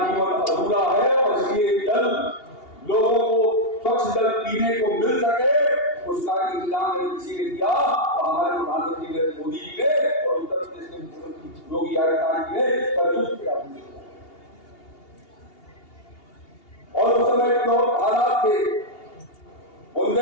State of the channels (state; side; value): late; right; 2.8 ms